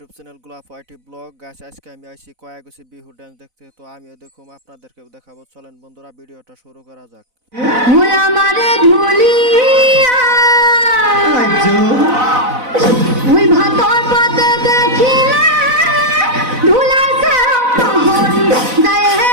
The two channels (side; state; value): left; late; 4.0 ms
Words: channel গোলাপ IT blog. Guys, আজকে আমি আইছি কয়াগছি বিহু ডান্স দেখতে। তো আমিও দেখুম, আপনাদেরকেও দেখাবো। চলেন বন্ধুরা, ভিডিওটা শুরু করা যাক। ওই আমারে ধুলিয়া ওই ভাতর পাতে দেখিলে ধুলাছে মোহন যায়